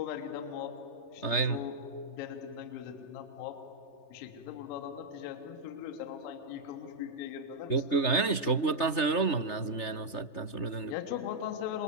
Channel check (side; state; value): right; late; 3.3 ms